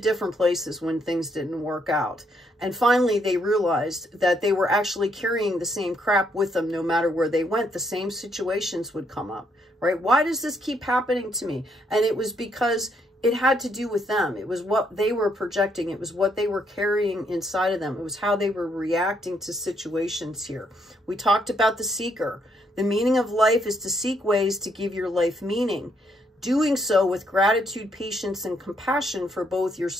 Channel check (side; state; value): both; normal; correlation 0.73